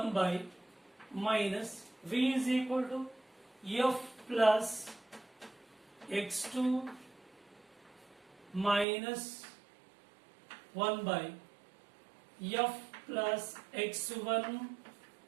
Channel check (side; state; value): left; drops out; at 8.8 s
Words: by minus v is equal to f plus x2 minus 1 by f plus x1.